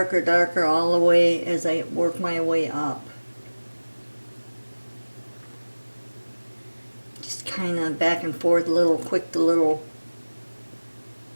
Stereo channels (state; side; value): inverted; both; correlation -1.00